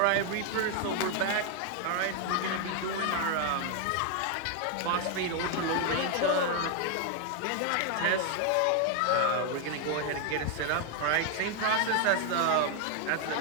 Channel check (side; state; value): both; different; correlation 0.01